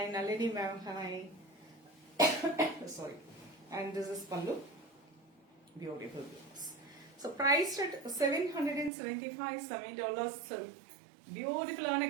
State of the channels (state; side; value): drops out; left; at 8.9 s